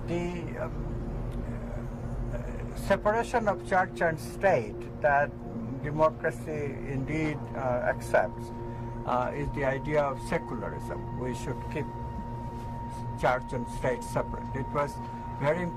The separation of church and state that democracy indeed accepts is the idea of secularism. We should keep church and state separate. It was very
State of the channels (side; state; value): both; identical; correlation 1.00